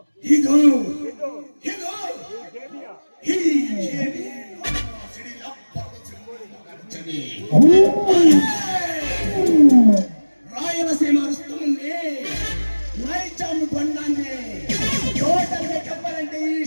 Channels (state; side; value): inverted; both; correlation -1.00